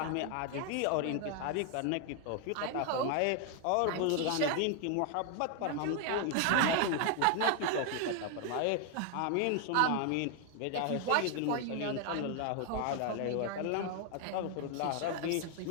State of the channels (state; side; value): different; both; correlation 0.00